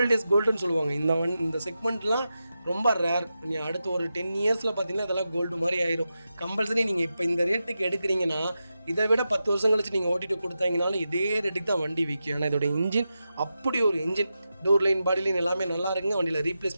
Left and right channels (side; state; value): both; inverted; correlation -0.90